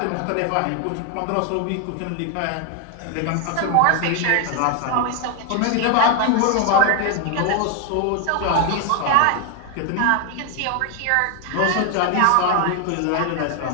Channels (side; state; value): both; different; correlation 0.01